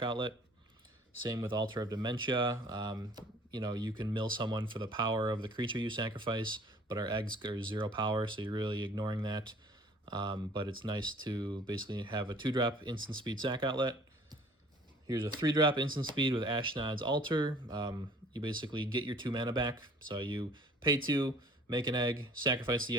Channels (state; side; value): normal; both; correlation 0.52